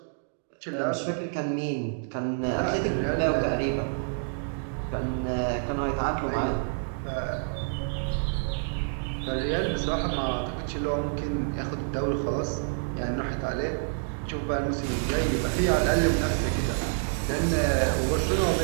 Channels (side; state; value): left; silent; digital silence